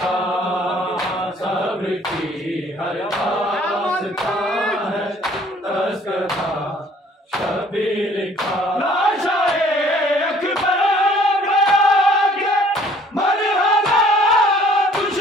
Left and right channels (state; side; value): normal; both; correlation 0.57